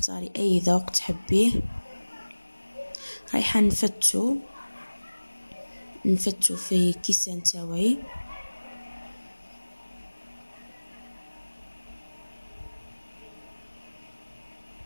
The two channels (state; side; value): inverted; both; correlation -1.00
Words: اي ذوق تحبيه. رايحه نفتو في كيسان تاوعي.